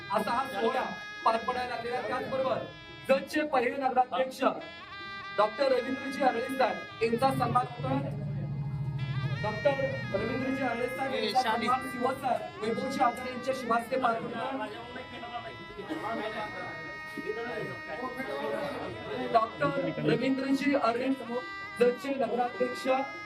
असा हा सोहळा पार पडायला लागलेला. त्याचबरोबर जतचे पहिले नगराध्यक्ष डॉक्टर रवींद्रजी आरळे साहेब यांचा सन्मान होतोय. डॉक्टर रवींद्रजी आरळे साहेब यांचा सन्मान शिवसर वैभवजी आचार्य यांच्या शुभास्ते पार पडतोय. डॉक्टर रवींद्रजी आरळे जतचे नगराध्यक्ष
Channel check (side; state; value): both; identical; correlation 1.00